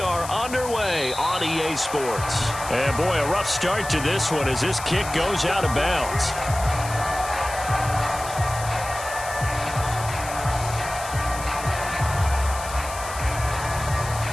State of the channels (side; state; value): left; noise; hiss, 11 dB below the sound